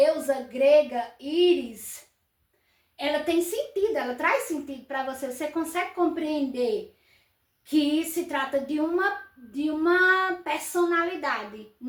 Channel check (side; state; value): both; identical; correlation 1.00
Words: grega Íris, ela tem sentido, ela traz sentido para você. Você consegue compreender que se trata de uma personalidade,